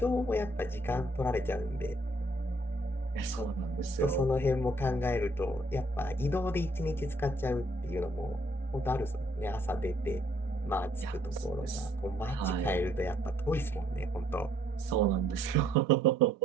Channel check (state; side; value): normal; both; correlation 0.66